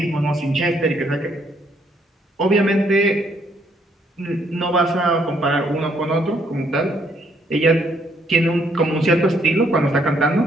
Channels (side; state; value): both; normal; correlation 0.69